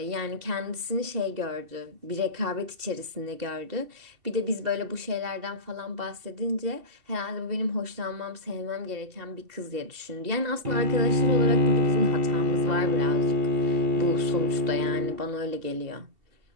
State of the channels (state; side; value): late; left; 2.7 ms